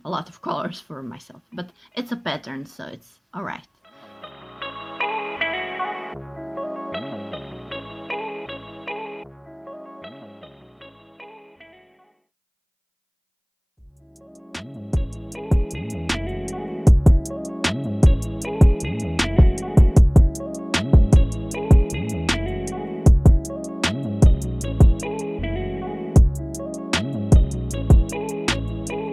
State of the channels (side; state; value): both; identical; correlation 1.00